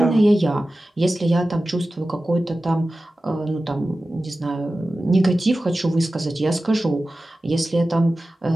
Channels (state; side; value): normal; both; correlation 0.95